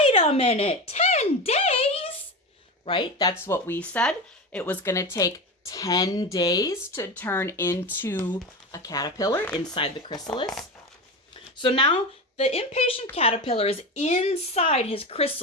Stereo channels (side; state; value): both; normal; correlation 0.23